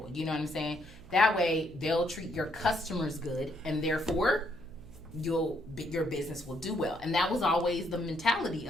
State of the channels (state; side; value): noise; right; hum, 19 dB below the sound